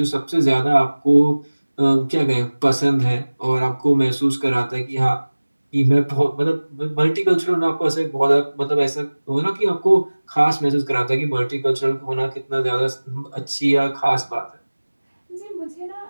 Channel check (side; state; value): both; inverted; correlation -1.00